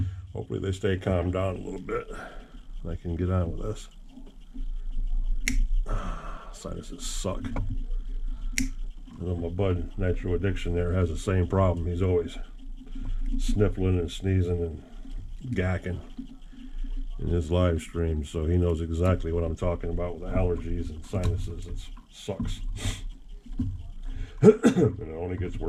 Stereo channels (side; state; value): both; identical; correlation 1.00